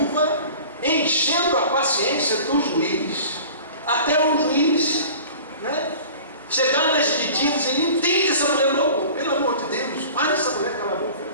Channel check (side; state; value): both; inverted; correlation -0.42